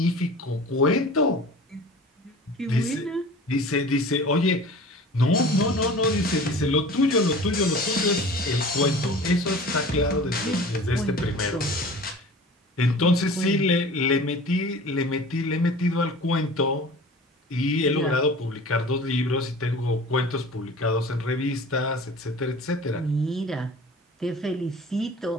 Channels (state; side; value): normal; both; correlation 0.41